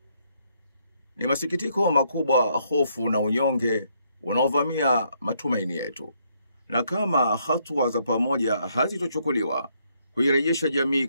Ni masikitiko makubwa hofu na unyonge unaovamia matumaini yetu. Na kama hatua za pamoja hazitochukuliwa kuirejesha jamii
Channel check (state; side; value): inverted; both; correlation -0.72